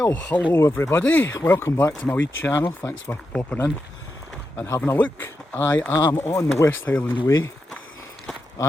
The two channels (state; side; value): normal; both; correlation 0.87